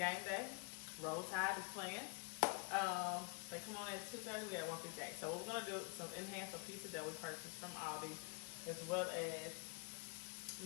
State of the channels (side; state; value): right; quieter; 33.0 dB